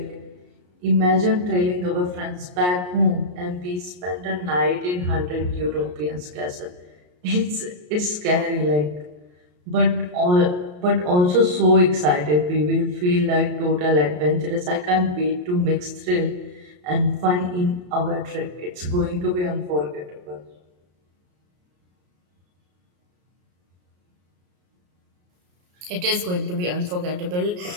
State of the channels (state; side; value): late; left; 33 ms